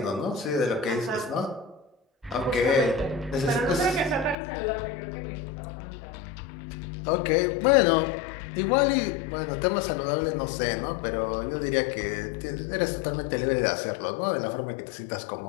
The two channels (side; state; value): right; drops out; at 4.4 s